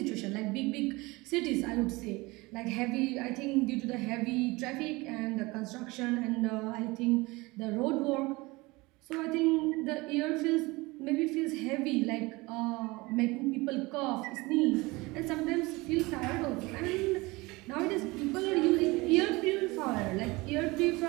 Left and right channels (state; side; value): quieter; left; 23.0 dB